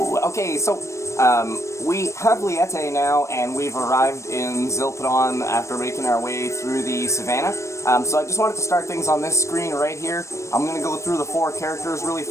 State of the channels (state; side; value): late; right; 0.14 ms